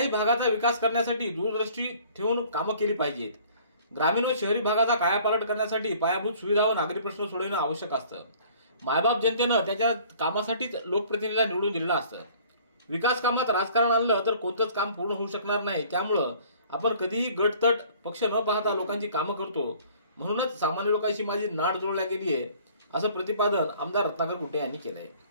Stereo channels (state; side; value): inverted; both; correlation -0.53